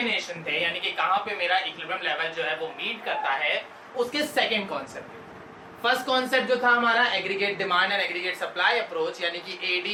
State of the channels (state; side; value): identical; both; correlation 1.00